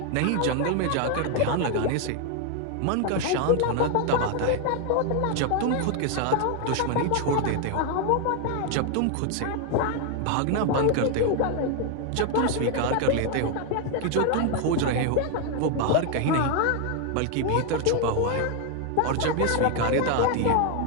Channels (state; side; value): different; both; correlation 0.01